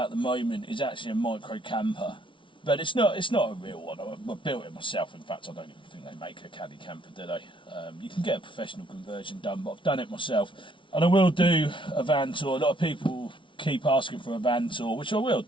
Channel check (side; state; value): right; late; 0.25 ms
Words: the moment is actually a micro camper, but it's not a real one. I built it myself. In fact, I don't even think they make a caddy camper, do they? You can get a professional conversion done, but I've done it myself, and I will do a van tour. A lot of people keep asking for a van tour, which I will